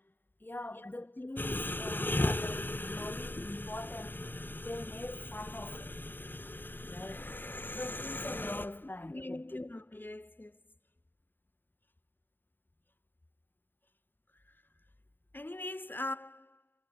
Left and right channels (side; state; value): right; late; 0.093 ms